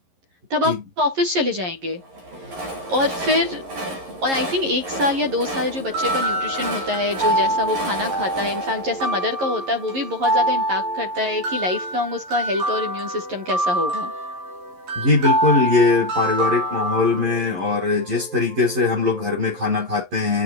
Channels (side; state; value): left; late; 11 ms